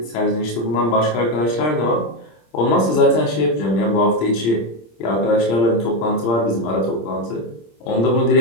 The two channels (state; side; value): late; right; 26 ms